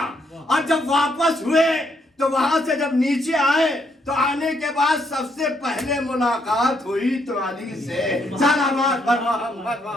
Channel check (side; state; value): both; normal; correlation 0.74